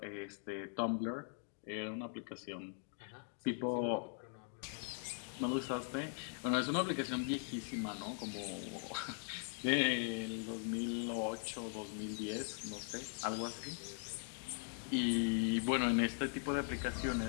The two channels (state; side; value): silent; right; 51 dB below the other